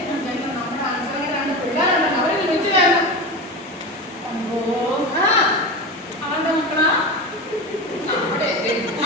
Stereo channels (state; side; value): normal; both; correlation 0.25